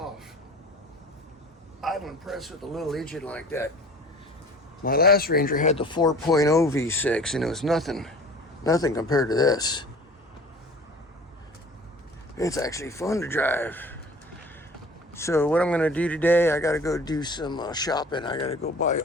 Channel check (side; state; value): both; normal; correlation 0.44